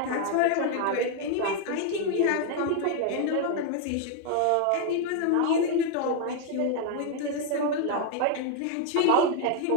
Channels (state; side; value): different; both; correlation 0.01